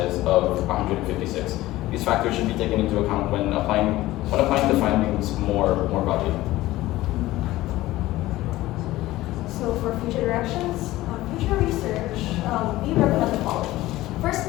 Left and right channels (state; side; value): quieter; right; 16.9 dB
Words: of 156. These factors should be taken into account when applying the findings more broadly. So for future directions, future research, we recommend the following.